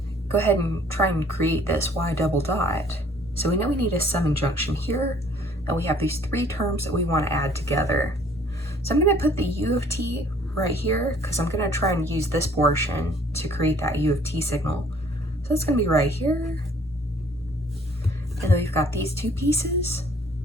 go ahead and try and create this y double dot. So we know we need a summing junction here, and we have these 3 terms that we want to add together. So I'm going to put the u of t right here because I'm going to try and use this portion to create that u of t signal. So it's going to be right here. And then we've got these two pieces.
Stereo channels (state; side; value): normal; both; correlation 0.57